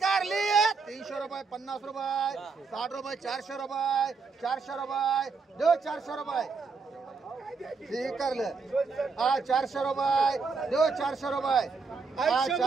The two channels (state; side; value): quieter; left; 4.7 dB